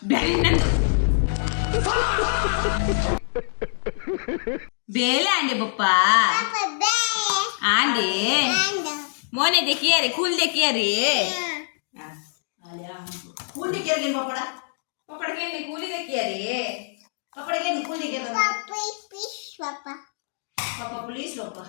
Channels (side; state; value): right; silent; digital silence